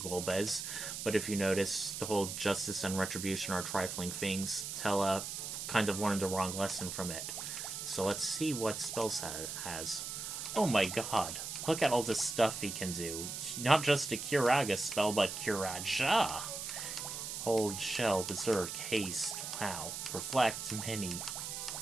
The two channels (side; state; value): right; noise; hiss, 6 dB below the sound